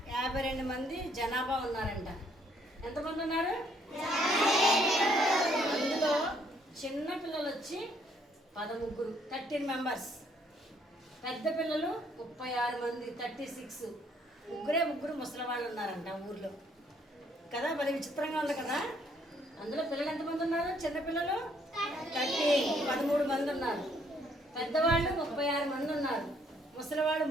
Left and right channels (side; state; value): both; normal; correlation 0.67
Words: 52 మంది జనాభా ఉన్నారంట. ఎంతమంది ఉన్నారు? అందులో చిన్న పిల్లలు వచ్చి 13, 13 మెంబర్స్. పెద్ద పిల్లలు 36 మంది, 36. ముగ్గురు ముసలివాళ్ళు ఉన్నారంట ఆ ఊర్లో కదా. మరి విచిత్రంగా ఉంది కదా. అందులో పిల్లలు ఎంతమంది ఉన్నారు? చిన్నపిల్లలు 13 మంది ఉన్నారు. పెద్దవాళ్ళు 36 మంది ఉన్నారు. ముసలివాళ్ళు